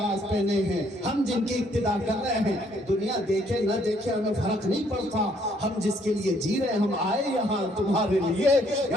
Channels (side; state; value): both; normal; correlation 0.67